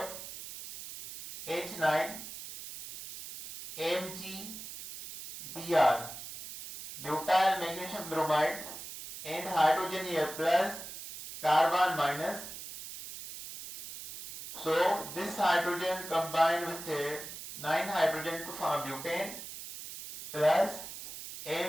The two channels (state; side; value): noise; right; hiss, 11 dB below the sound